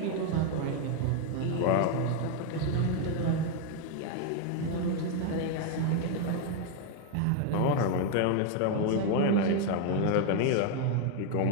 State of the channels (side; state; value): both; different; correlation 0.01